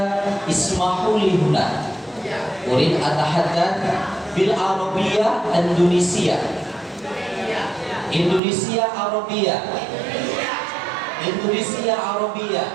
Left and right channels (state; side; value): drops out; left; at 8.4 s